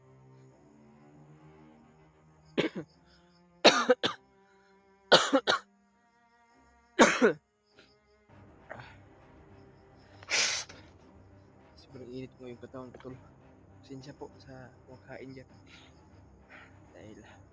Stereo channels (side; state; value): both; identical; correlation 1.00